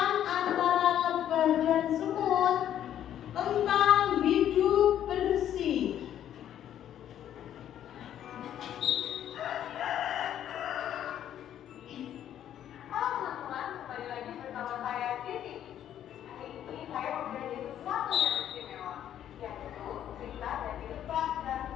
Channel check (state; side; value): quieter; right; 10.7 dB